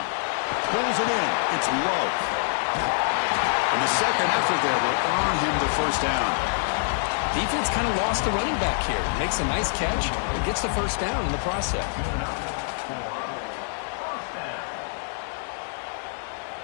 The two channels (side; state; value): right; silent; 61 dB below the other